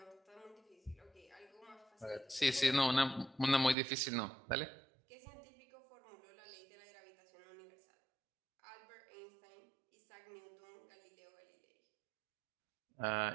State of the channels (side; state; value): left; drops out; at 3.8 s